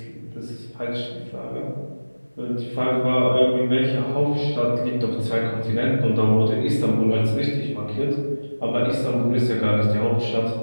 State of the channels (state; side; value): inverted; both; correlation -1.00